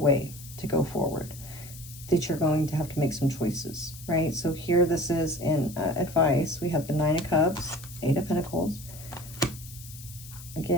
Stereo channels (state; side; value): noise; left; hiss, 16 dB below the sound